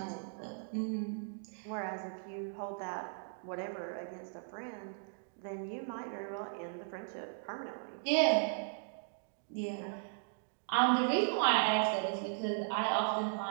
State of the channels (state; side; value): silent; left; digital silence